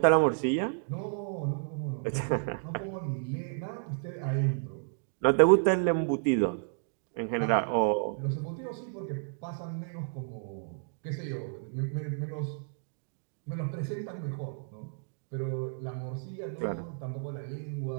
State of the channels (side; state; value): left; silent; digital silence